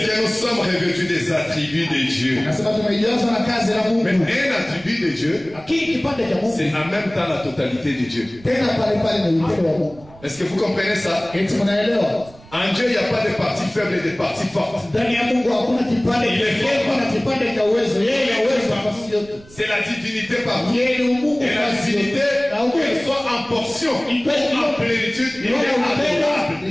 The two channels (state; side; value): noise; right; rumble, 23 dB below the sound